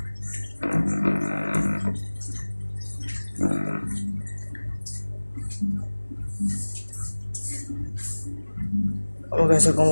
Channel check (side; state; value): both; inverted; correlation -1.00